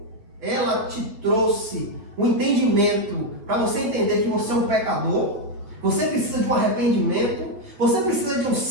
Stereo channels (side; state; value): left; late; 8.7 ms